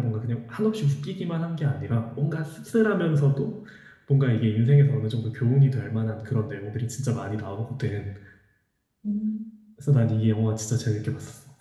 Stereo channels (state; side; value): identical; both; correlation 1.00